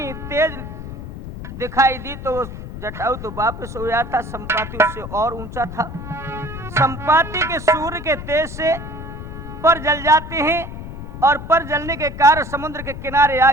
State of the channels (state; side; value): noise; left; rumble, 10 dB below the sound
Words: तेज दिखाई दी तो वो जटायु तो वापस हो गया था। संपाति उससे और ऊंचा था। संपाति के सूर्य के तेज से पर जल जाते हैं और पर जलने के कारण समुद्र के किनारे आ